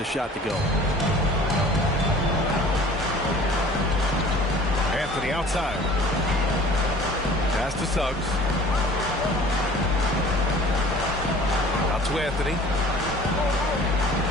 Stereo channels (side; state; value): both; normal; correlation 0.47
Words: shot to go. Anthony outside. Pass to Suggs. Out to Anthony.